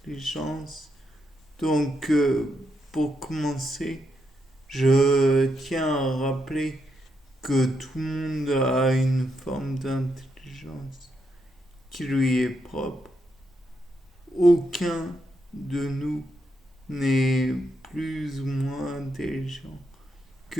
Donc, pour commencer, je tiens à rappeler que tout le monde a une forme d'intelligence qui lui est propre. Aucun de nous n'est plus ou moins intelligent que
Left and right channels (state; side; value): normal; both; correlation 0.81